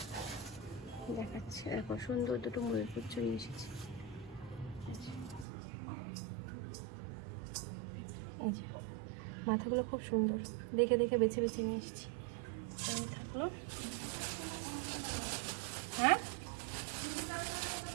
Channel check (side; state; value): left; drops out; at 5.5 s